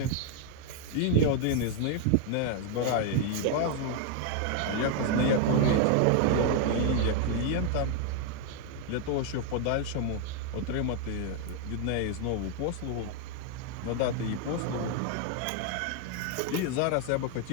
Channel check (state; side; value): different; both; correlation 0.00